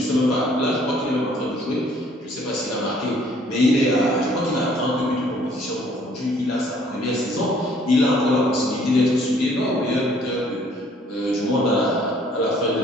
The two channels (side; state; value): both; normal; correlation 0.60